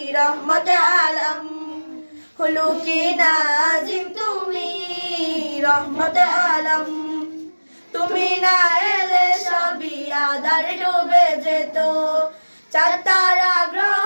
রহমতে আলম। খুলুকি নাজিম তুমি রহমতে আলম। তুমি না এলে সবই আধার ডুবে যেত, চাঁদ তারা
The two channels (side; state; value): both; inverted; correlation -1.00